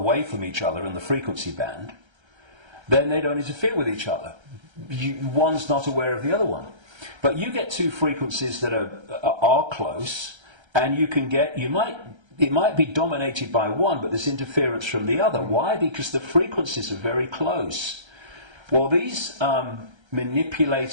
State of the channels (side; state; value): left; late; 1.3 ms